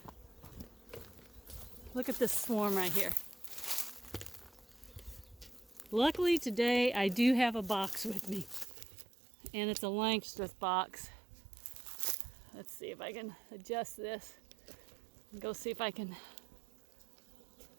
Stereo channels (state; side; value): drops out; left; at 8.7 s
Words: Look at this swarm right here. Luckily today I do have a box with me, and it's a Langstroth box. Let's see if I can adjust this and go see if I can.